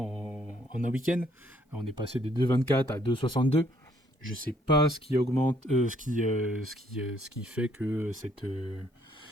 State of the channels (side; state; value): both; normal; correlation 0.66